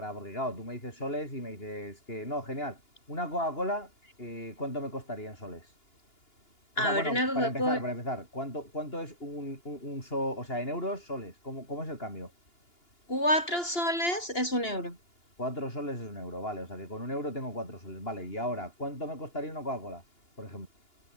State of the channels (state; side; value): late; right; 2.9 ms